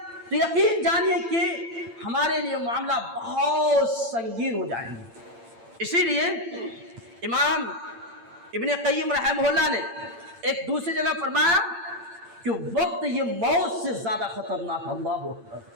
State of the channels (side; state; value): left; late; 8.8 ms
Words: تو یقین جانیے کہ ہمارے لیے معاملہ بہت سنگین ہو جائیں گے۔ اسی لیے امام ابن قیم رحمہ اللہ نے ایک دوسری جگہ فرمایا کہ وقت یہ موت سے زیادہ خطرناک ہے۔ اللہ اکبر،